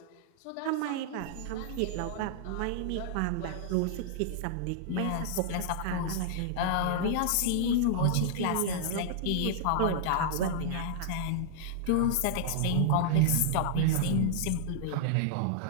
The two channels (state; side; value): different; both; correlation -0.01